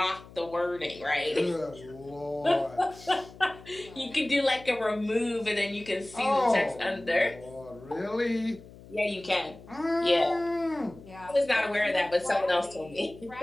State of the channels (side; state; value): left; noise; hum, 19 dB below the sound